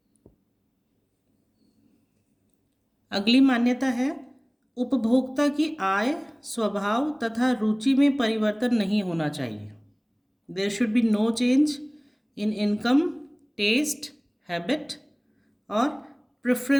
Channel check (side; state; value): both; identical; correlation 1.00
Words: अगली मान्यता है उपभोक्ता की आय, स्वभाव तथा रुचि में परिवर्तन नहीं होना चाहिए। There should be no change in income, taste, habit और